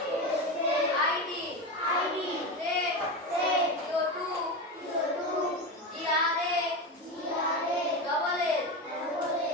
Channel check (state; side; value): normal; both; correlation 0.19